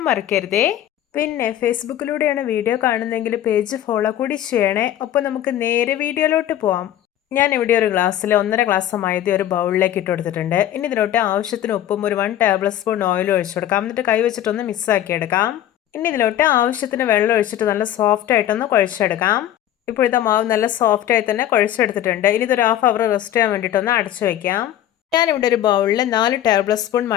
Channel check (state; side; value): quieter; right; 11.9 dB